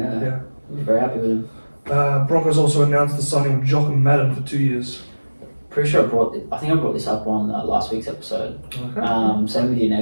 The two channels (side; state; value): both; inverted; correlation -1.00